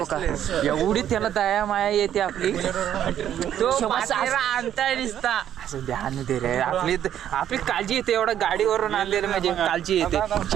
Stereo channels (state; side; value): quieter; left; 10.5 dB